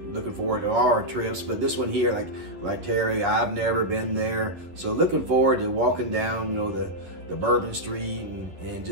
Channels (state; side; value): late; left; 11 ms